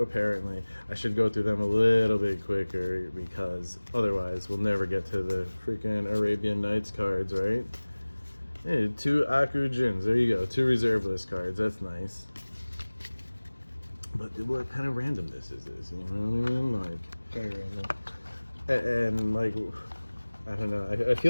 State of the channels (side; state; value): both; inverted; correlation -1.00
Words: apparently. I should go through them a little bit quicker because otherwise we'll never get to the freaking Arabian Nights cards, right? Hey, 2 Aku Jins, there you go, 2 reserve list cards, that's nice. But what kind of randomness is this, you know what I mean? Like, Very random. and like, I don't know. I